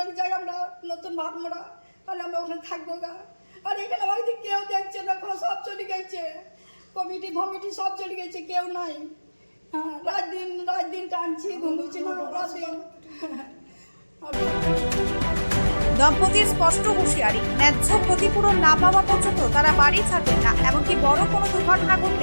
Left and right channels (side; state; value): both; inverted; correlation -1.00